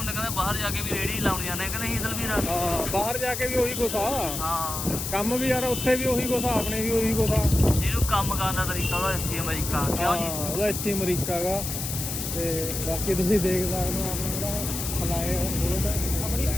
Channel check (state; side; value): noise; left; hiss, 4 dB below the sound